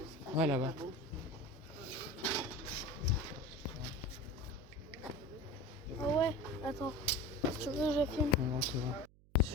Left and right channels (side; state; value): right; noise; hum, 26 dB below the sound